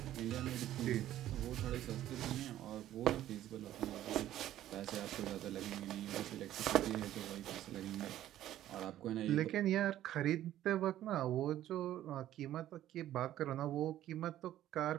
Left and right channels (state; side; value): quieter; left; 12.8 dB